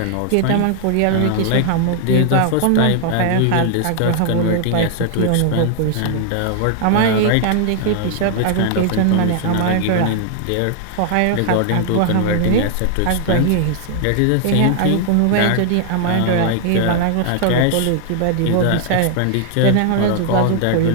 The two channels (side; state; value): both; different; correlation 0.00